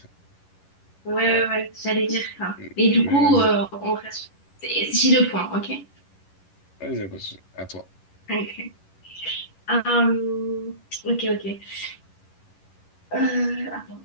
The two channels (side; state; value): right; late; 11 ms